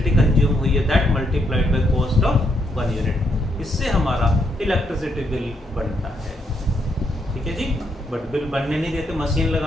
कंज्यूम हुई है, that multiplied by cost of 1 unit. इससे हमारा इलेक्ट्रिसिटी बिल बनता है, ठीक है जी। बट बिल बनने नहीं देते, मशीन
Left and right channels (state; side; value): normal; both; correlation 0.77